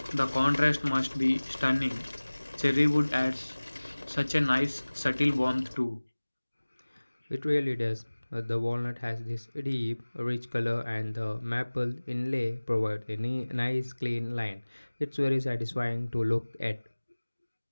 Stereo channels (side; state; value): both; inverted; correlation -1.00